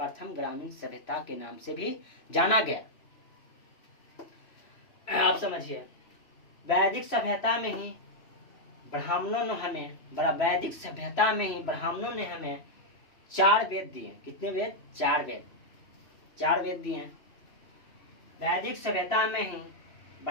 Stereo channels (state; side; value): late; right; 3.0 ms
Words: ग्रामीण सभ्यता के नाम से भी जाना गया। आप समझिए, वैदिक सभ्यता में ही ब्राह्मणों ने हमें वैदिक सभ्यता में ही ब्राह्मणों ने हमें 4 वेद दिए। कितने वेद? 4 वेद। 4 वेद दिए। वैदिक सभ्यता में ही